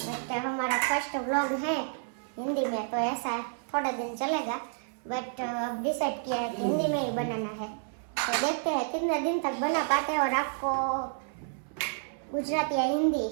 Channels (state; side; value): silent; left; 58 dB below the other